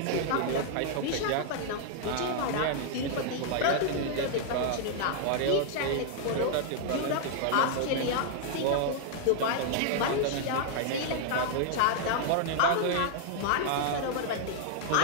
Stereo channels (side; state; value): both; different; correlation 0.00